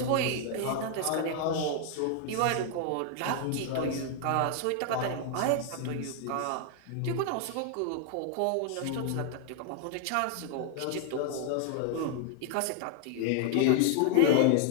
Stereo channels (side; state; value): both; different; correlation 0.00